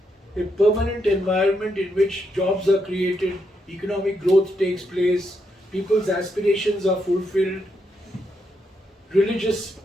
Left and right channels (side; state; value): both; normal; correlation 0.80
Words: A permanent environment in which jobs are created, economic growth takes place, people's aspirations are fulfilled, religious